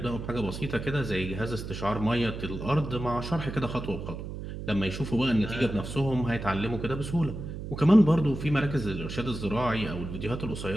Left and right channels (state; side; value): noise; right; hum, 8 dB below the sound